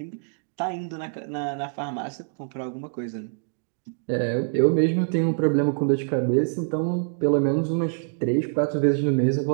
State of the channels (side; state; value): left; silent; digital silence